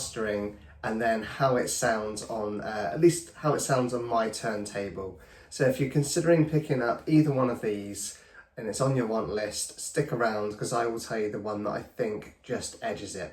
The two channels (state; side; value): identical; both; correlation 1.00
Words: and then how it sounds on, at least how it sounds on my turntable. So if you're considering picking up either one of these and it's on your want list, stick around because I will tell you the one that I think just edges